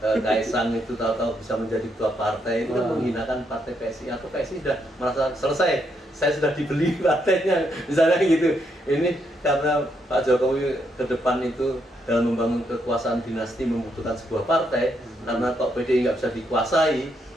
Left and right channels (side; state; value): both; normal; correlation 0.77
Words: itu tahu-tahu bisa menjadi ketua partai, itu kan menghinakan partai PSI, atau PSI sudah merasa selesai, saya sudah dibeli partainya, misalnya gitu. Ini karena Pak Jokowi ke depan itu dalam membangun kekuasaan dinasti membutuhkan sebuah partai, karena kok PDI nggak bisa dikuasai,